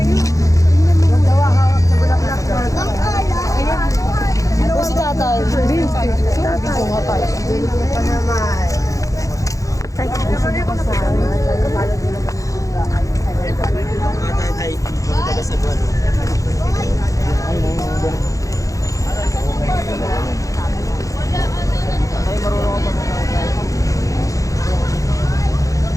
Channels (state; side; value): late; right; 0.16 ms